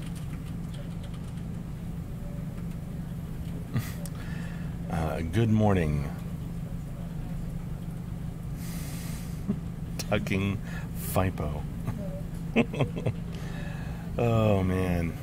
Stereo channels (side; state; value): both; identical; correlation 1.00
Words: Good morning. Tucking Fipo. Oh, man.